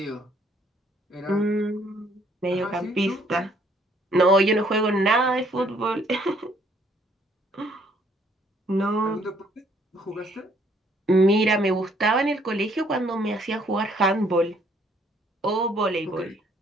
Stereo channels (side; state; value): both; normal; correlation 0.65